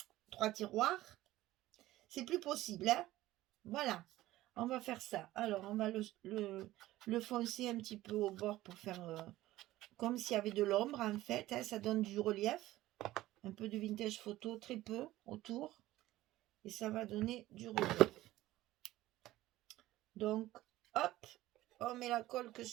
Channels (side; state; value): left; quieter; 16.1 dB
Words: 3 tiroirs, c'est plus possible. Hein. Voilà, on va faire ça. Alors, on va le foncer un petit peu au bord pour faire comme s'il y avait de l'ombre en fait. Hein, ça donne du relief. Un peu de vintage photo, très peu autour. Et ça va donner du relief. Donc, hop, on met la colle que